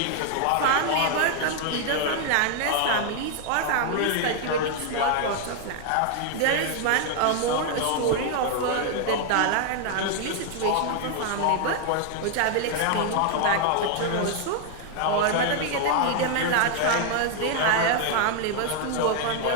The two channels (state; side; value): different; both; correlation 0.00